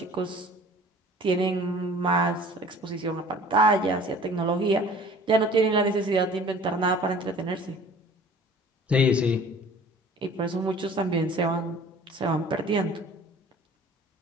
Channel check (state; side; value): normal; both; correlation 0.48